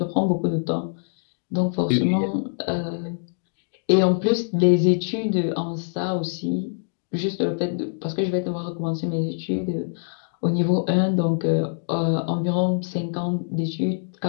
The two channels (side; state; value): right; silent; digital silence